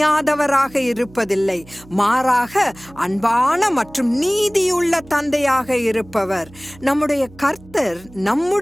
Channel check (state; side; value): noise; right; hum, 23 dB below the sound